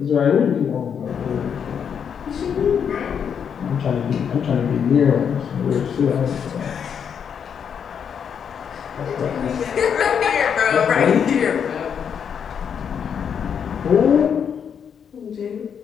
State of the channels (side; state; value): right; quieter; 7.5 dB